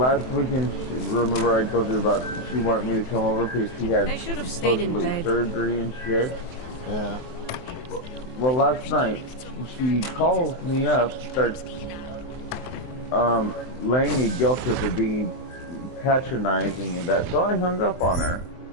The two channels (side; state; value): right; late; 23 ms